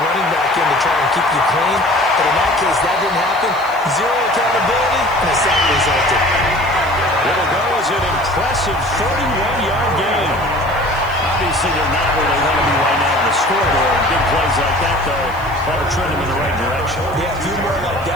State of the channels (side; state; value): right; noise; hiss, 23 dB below the sound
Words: running back in to try and keep you clean. But in that case, that didn't happen. Zero accountability, and a sack resulted. It'll go as an impressive 31-yard gain. Obviously, they're not where they want to be right now on the scoreboard. Big plays like that, though, ought to trend them in the right direction. Yeah, a few more like